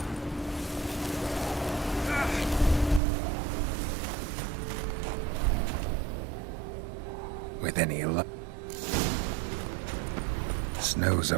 With any luck. Snow's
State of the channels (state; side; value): drops out; left; at 3.0 s